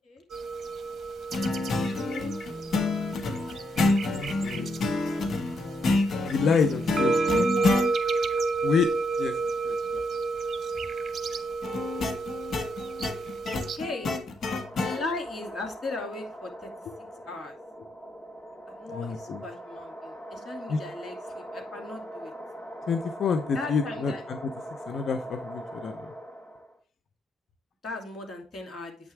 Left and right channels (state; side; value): normal; both; correlation 0.78